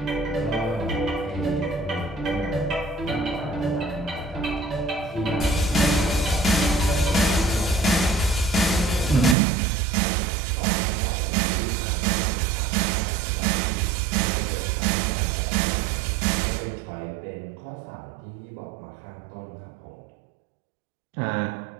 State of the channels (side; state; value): left; drops out; at 9.3 s